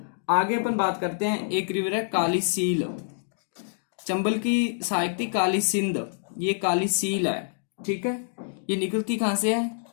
आगे अपन बात करते हैं, एक रिवर है काली सील। चंबल की सहायक थी काली सिंध, ये काली सील है। ठीक है, ये निकलती कहां से है?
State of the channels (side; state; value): right; silent; digital silence